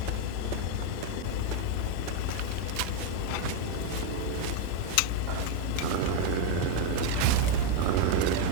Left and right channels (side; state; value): both; different; correlation 0.01